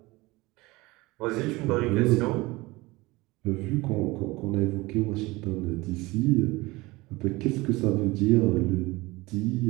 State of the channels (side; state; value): left; quieter; 21.7 dB